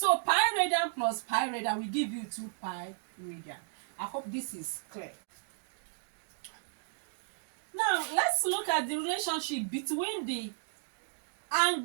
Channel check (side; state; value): left; silent; digital silence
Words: pi radian plus pi radian will give you 2 pi radian. I hope this is clear. Now let's look at the relationship between the